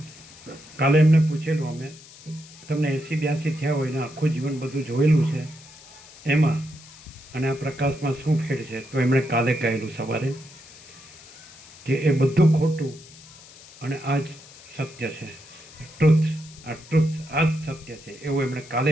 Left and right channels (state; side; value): noise; left; hiss, 20 dB below the sound